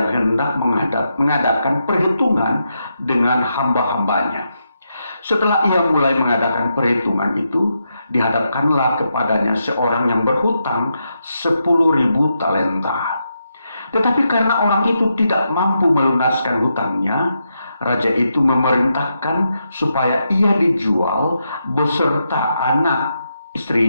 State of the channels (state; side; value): inverted; both; correlation -0.83